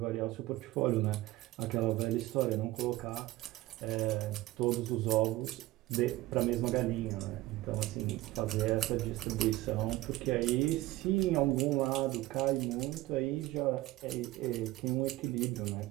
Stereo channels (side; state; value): left; quieter; 17.7 dB